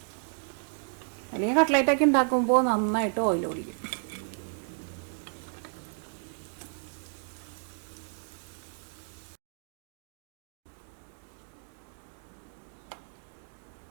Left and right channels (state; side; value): silent; left; 56 dB below the other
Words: അല്ലെങ്കിൽ കട്ട്ലേറ്റൊക്കെ ഉണ്ടാക്കുമ്പോൾ നന്നായിട്ട് ഓയിൽ കുടിക്കും.